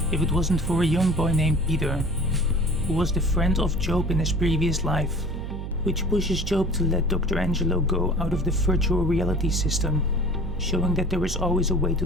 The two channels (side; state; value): right; noise; hum, 6 dB below the sound